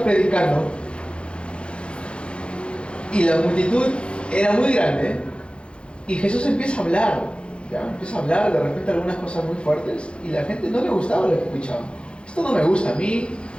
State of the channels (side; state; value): right; late; 0.057 ms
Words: predicando y la multitud era muy grande Y Jesús empieza a hablar, ¿ya? Empieza a hablar de repente algunas cosas muy fuertes y la gente no le gustaba lo que escuchaba. Esto no me gusta, a mí